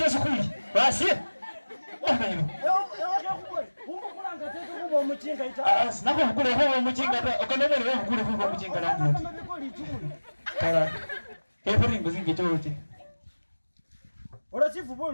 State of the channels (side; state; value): both; inverted; correlation -1.00